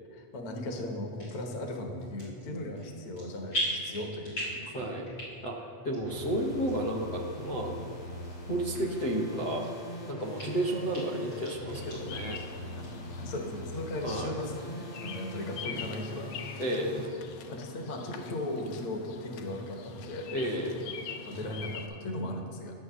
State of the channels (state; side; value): late; right; 8.0 ms